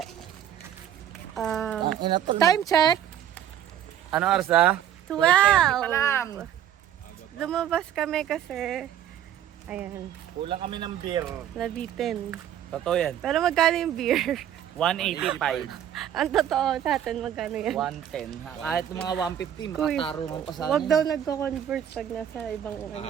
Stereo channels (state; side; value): quieter; left; 10.5 dB